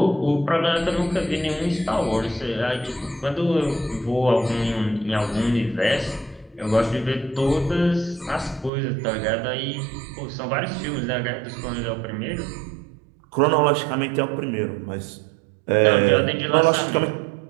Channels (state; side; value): drops out; left; at 8.7 s